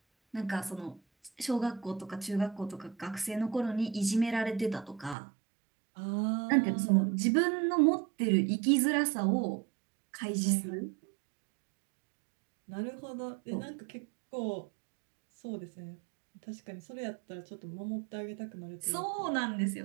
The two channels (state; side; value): drops out; left; at 5.2 s